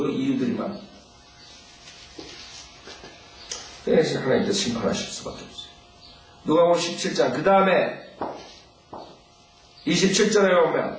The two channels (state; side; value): identical; both; correlation 1.00